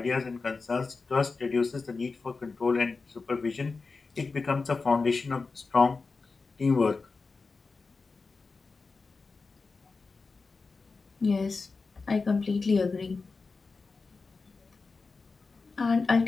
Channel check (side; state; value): right; quieter; 4.2 dB